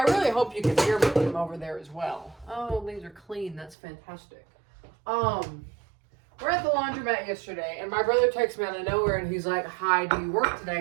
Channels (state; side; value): drops out; left; at 3.8 s